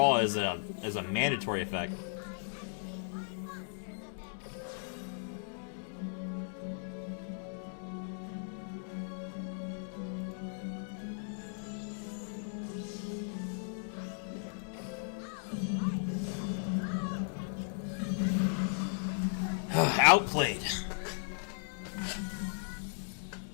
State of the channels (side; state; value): right; silent; digital silence